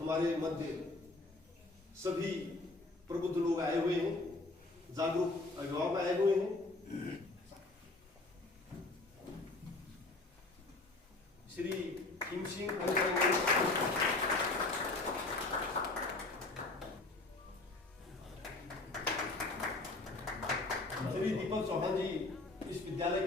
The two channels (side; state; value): right; quieter; 3.1 dB